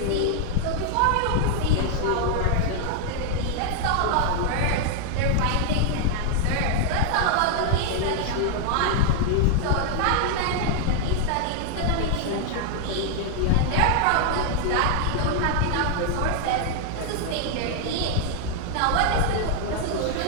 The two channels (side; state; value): both; different; correlation 0.00